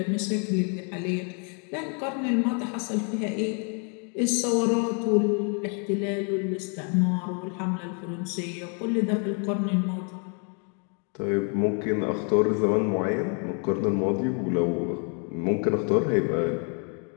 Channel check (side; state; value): right; quieter; 38.9 dB